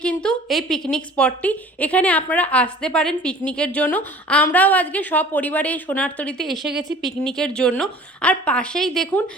কিন্তু এই পিকনিক স্পটটি। এখানে আপনারা আসতে পারেন পিকনিকের জন্য। আমরাও আজকে সপরিবারে এই সোনারতরীতে এসে গেছি পিকনিকের জন্য। আর পাশেই দেখুন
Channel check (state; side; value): normal; both; correlation 0.46